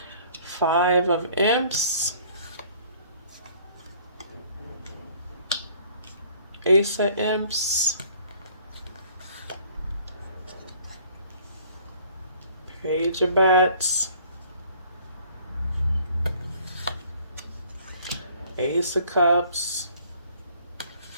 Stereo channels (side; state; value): both; inverted; correlation -0.56